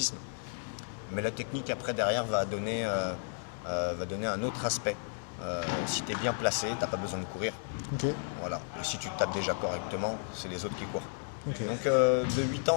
Mais la technique après derrière va donner un autre aspect. Si tu es bien placé, tu n'as pas besoin de courir. Ok. Voilà. Et si tu tapes déjà correctement, c'est les autres qui courent. Ok. Donc de 8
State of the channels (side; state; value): right; silent; 56 dB below the other